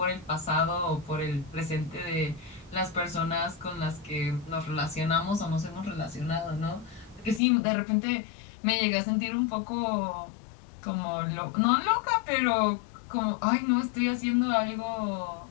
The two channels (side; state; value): right; drops out; at 7.4 s